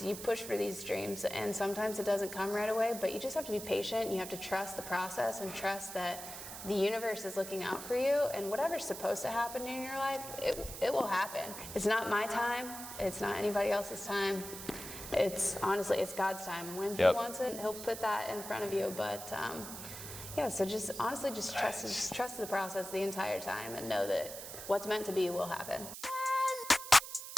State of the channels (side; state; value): right; noise; hiss, 10 dB below the sound